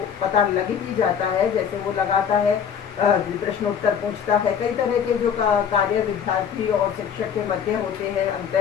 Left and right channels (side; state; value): right; quieter; 7.7 dB